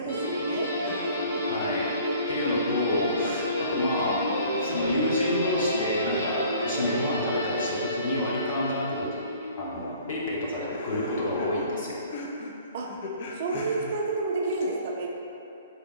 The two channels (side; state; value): both; inverted; correlation -0.53